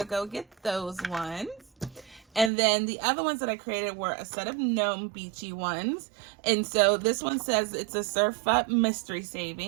go get those ones. And then the other ones that I created were a set of gnome beachy ones. And so this one says it's a surf up mystery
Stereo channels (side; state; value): left; drops out; at 2.5 s